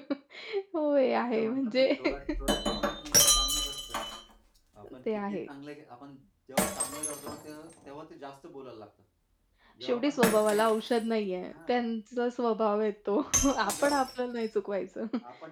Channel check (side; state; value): both; identical; correlation 1.00